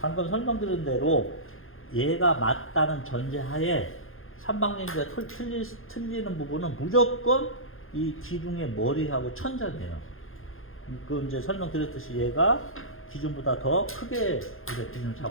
방금 설명드린 대로 얘가 맞다는 전제하에 삼방향기가 틀리는 부분은 무조건 이 기둥의 머리하고 천장이에요. 그 이제 설명드렸듯이 얘가 기준보다 더 크게 우리가 기준을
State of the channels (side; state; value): right; late; 0.60 ms